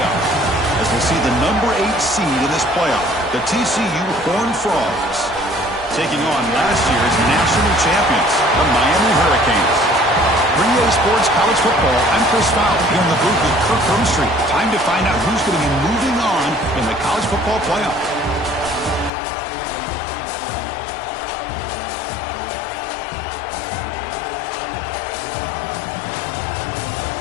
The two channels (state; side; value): drops out; right; at 19.1 s